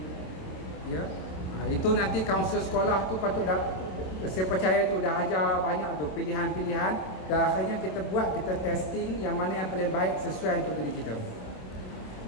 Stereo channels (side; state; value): right; late; 27 ms